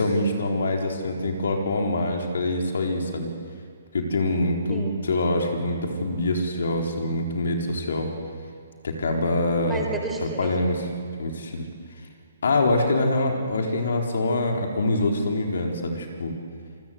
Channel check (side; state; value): both; inverted; correlation -0.69